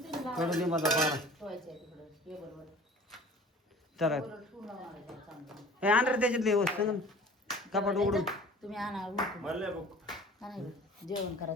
दे माझा पारा ठेवायचं आहे तिकडं टेबलवर. चला टेबलवर ठेवून लावणार आहे चांगलं. हे आंध्र त्याच्यातले वस्तू कपाट उघडून तुम्ही आणा उरकून. म्हणलं बघ आणा जेवण करा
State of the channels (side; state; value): both; normal; correlation 0.45